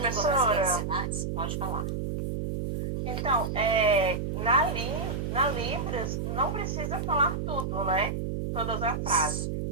brasileira de sinais, pode falar. Então, na Libras, não precisa falar tudo, né? Todas as frases.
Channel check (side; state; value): right; noise; hum, 2 dB below the sound